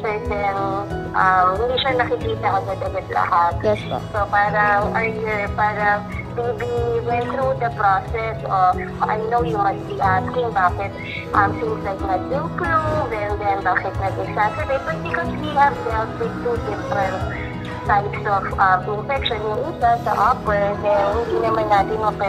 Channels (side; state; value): both; identical; correlation 1.00